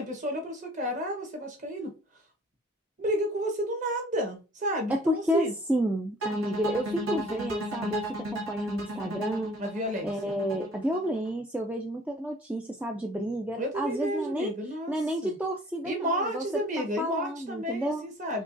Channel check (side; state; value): both; normal; correlation 0.52